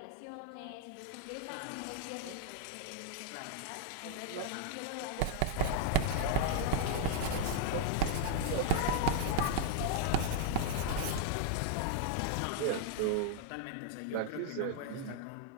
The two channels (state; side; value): different; both; correlation 0.00